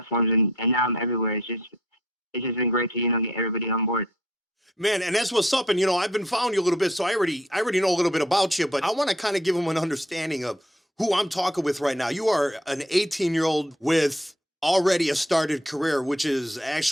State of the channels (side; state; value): both; normal; correlation 0.63